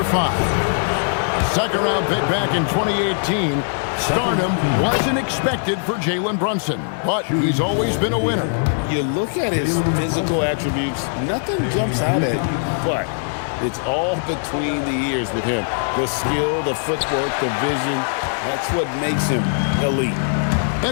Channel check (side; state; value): right; silent; digital silence